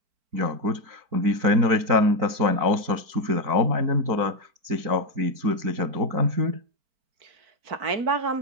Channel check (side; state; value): left; late; 4.4 ms